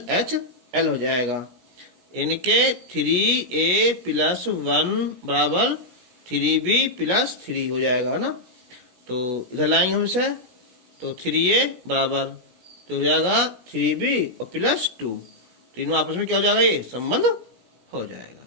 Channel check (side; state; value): left; late; 17 ms